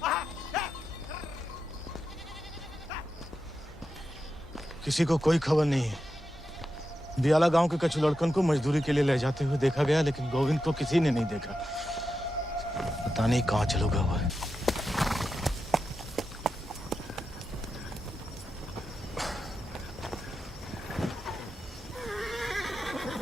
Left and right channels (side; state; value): both; normal; correlation 0.88